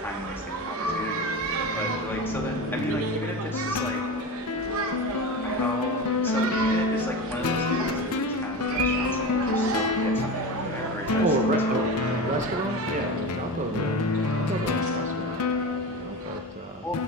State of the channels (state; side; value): normal; both; correlation 0.26